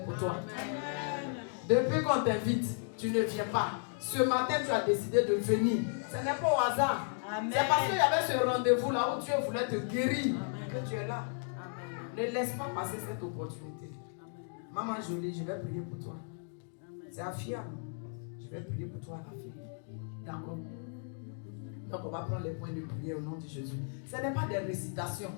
pour toi. Amen. Depuis qu'on t'invite, tu ne viens pas. Ce matin, tu as décidé de venir. Ce n'est pas au hasard. Amen. C'est parce qu'il y avait ce rendez-vous là où Dieu voulait te guérir. Amen. Que tu es là. Amen. Ne laisse pas passer cette opportunité. Amen. Maman Jolie, je vais prier pour toi. C'est Afia. Je vais prier pour toi, la fille. D'accord. Donc on va prendre les points de prière au nom de Jésus. Ce n'est pas des récitations.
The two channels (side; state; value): right; silent; 55 dB below the other